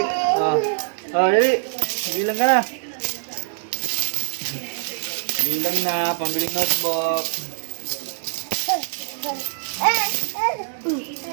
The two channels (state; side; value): silent; left; digital silence